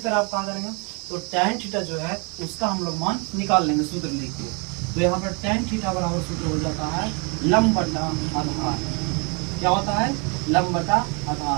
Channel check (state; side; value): quieter; left; 33.3 dB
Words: आप कहाँ करेंगे, तो tan थीटा जो है उसका हम लोग मान निकाल लेंगे सूत्र लिख के। तो यहाँ पर tan थीटा बराबर सूत्र हो जाता है लंब बटा आधार। क्या होता है, लंब बटा